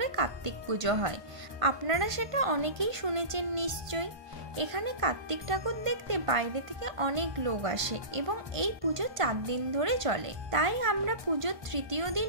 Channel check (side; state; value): left; late; 1.5 ms